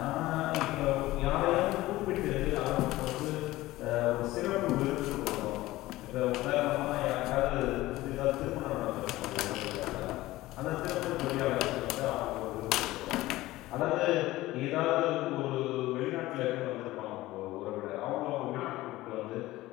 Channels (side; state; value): right; quieter; 17.4 dB